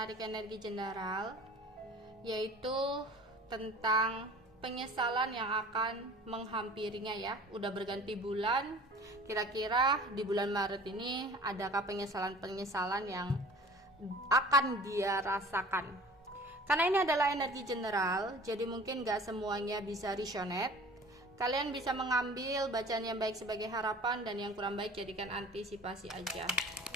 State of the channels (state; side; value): normal; both; correlation 0.45